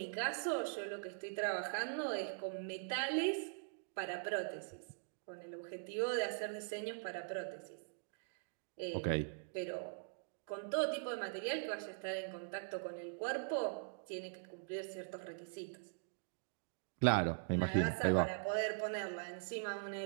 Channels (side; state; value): left; silent; digital silence